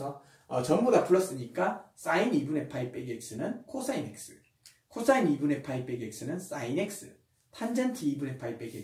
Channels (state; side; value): identical; both; correlation 1.00